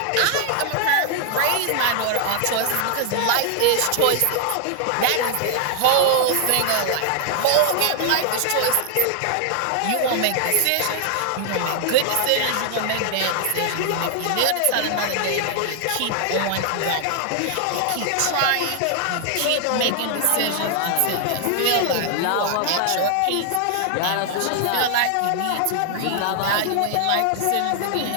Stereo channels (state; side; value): different; both; correlation 0.00